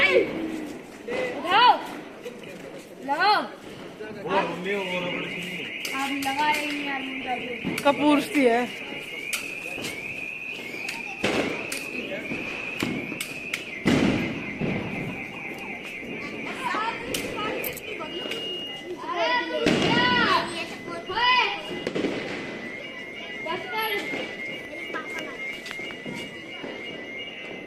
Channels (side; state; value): both; identical; correlation 1.00